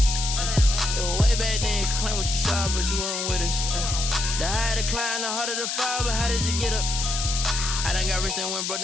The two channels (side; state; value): left; noise; hiss, 2 dB below the sound